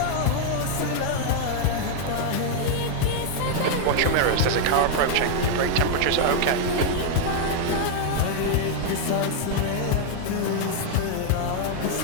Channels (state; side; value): different; both; correlation 0.00